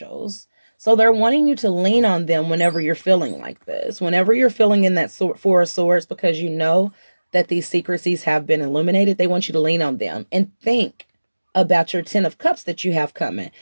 So they're wanting you to lean on them whenever you're feeling like this. Whenever you're feeling in that Four of Swords, because you know that these secrecies have been illuminated, they want you to lean on them and think about your Ten of Cups that you have coming.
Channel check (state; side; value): inverted; both; correlation -1.00